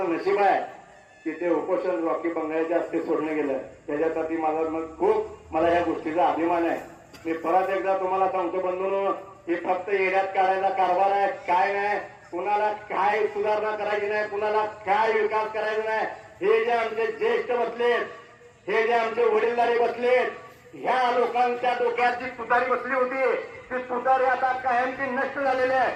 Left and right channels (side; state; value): both; identical; correlation 1.00